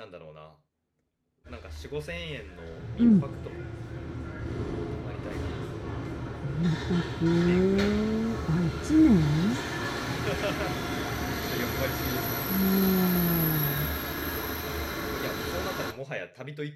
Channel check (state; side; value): identical; both; correlation 1.00